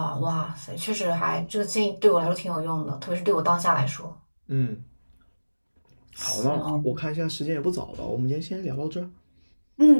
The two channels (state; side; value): inverted; both; correlation -1.00